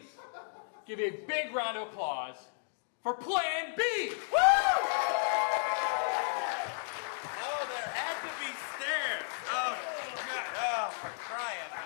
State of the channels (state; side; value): silent; right; digital silence